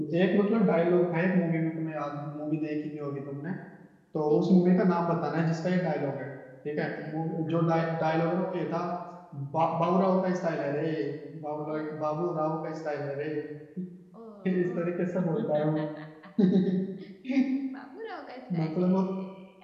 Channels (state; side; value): identical; both; correlation 1.00